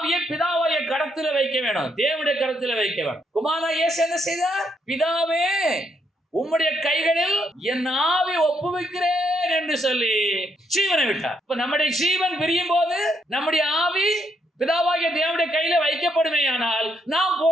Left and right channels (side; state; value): both; normal; correlation 0.75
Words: பிதாவாகிய கரத்தில வைக்க வேணும், தேவனுடைய கரத்தில வைக்க வேணும். குமாரனாகிய இயேசு என்ன செய்தார்? பிதாவே உம்முடைய கைகளில் என் ஆவி ஒப்புவிக்கிறேன் என்று சொல்லி ஜீவனை விட்டார். இப்ப நம்முடைய ஜீவன் பிரியும் போது நம்முடைய ஆவி பிதாவாகிய தேவனுடைய கையில வைக்கப்படுமேயானால் நாம்